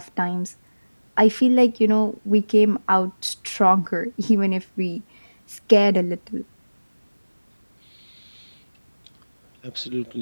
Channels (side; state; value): both; inverted; correlation -1.00